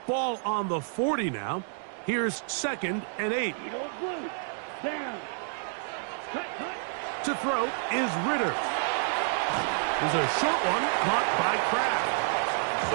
Ball on the 40 now. Here's second and 8. Eagle blue. Down. Cut, cut. To throw is Ritter. There's a short one caught by Kraft.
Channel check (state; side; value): silent; left; 59 dB below the other